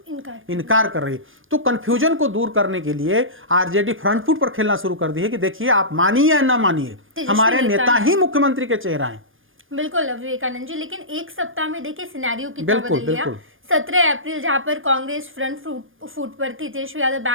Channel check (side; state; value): left; late; 0.59 ms